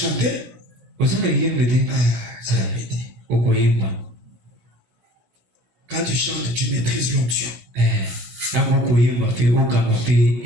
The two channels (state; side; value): late; left; 16 ms